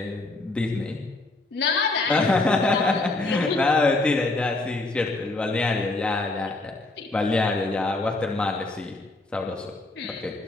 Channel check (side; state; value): right; quieter; 3.0 dB